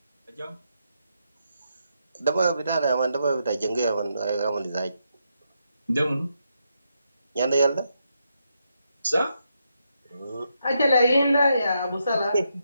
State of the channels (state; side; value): inverted; both; correlation -0.81